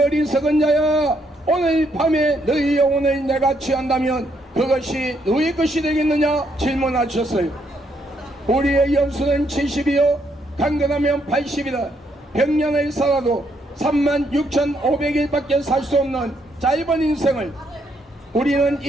자야, 오늘 밤에 너희 영혼을 내가 취한다면 그것이 너희 것이 되겠느냐 질문하셨어요. 우리의 연수는 70이요 강건하면 80이다. 100년을 살아도 36,500일밖에 살 수 없는 짧은 인생을 우리는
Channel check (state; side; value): normal; both; correlation 0.74